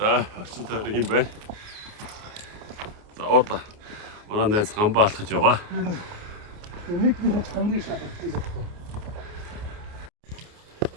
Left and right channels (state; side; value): late; left; 29 ms